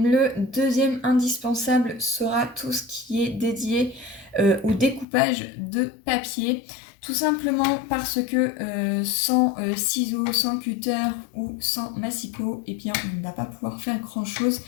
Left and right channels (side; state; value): right; drops out; at 5.1 s